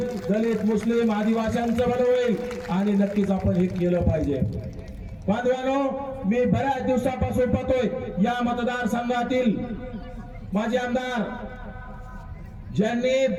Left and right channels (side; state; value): both; identical; correlation 1.00